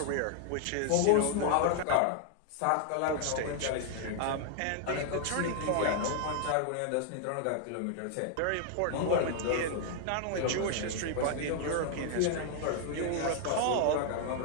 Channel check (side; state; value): both; different; correlation 0.00